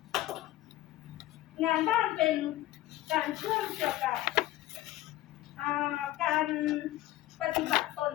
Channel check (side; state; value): right; quieter; 15.4 dB